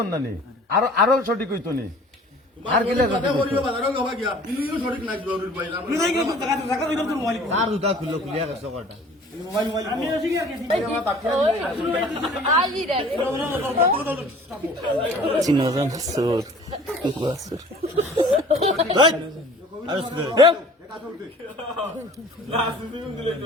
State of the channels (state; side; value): normal; both; correlation 0.48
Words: অন্যানি আরো সঠিক হইতো নি আর গেলে আর জুতা খুললো খুলিয়া গেছে কটা চিনজন সুর